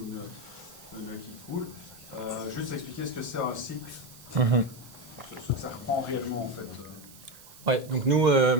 ou le qui coule. Juste expliquer ce que c'est un cycle, ce que ça reprend réellement en fait. Ouais, donc nous,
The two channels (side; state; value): right; noise; hiss, 20 dB below the sound